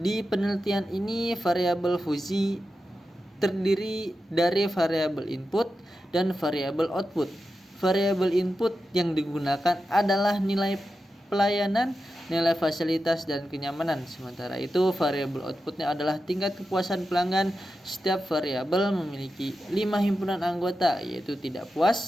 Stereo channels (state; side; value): normal; both; correlation 0.91